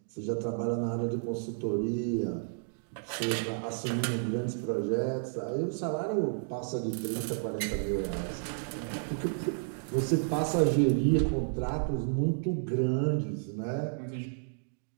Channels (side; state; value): left; silent; digital silence